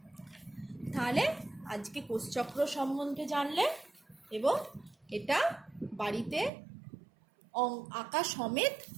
তাহলে আজকে কোষচক্র সম্বন্ধে জানলে, এবং এটা বাড়িতে আঁকা সমেত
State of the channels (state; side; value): drops out; left; at 6.5 s